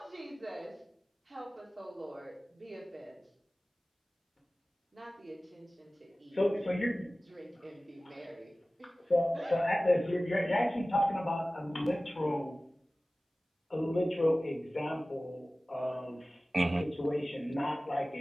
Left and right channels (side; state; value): both; normal; correlation 0.97